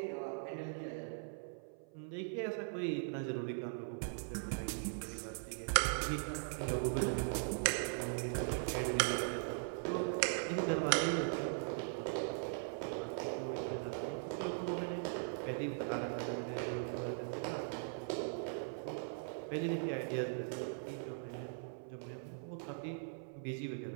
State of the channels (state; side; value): silent; left; 51 dB below the other